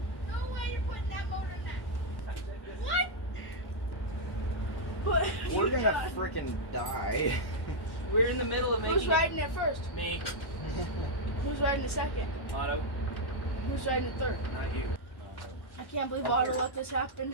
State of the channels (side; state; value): right; late; 1.1 ms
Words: No way you're putting that motor in that. What? But We're gonna freaking die. We're in the middle of making. Who's riding it first? Me. Who's riding the second? Otto. Who's riding the third? Not you. I can't believe Otto let this